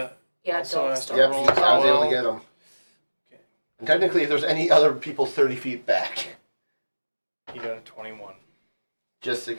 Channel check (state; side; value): inverted; both; correlation -1.00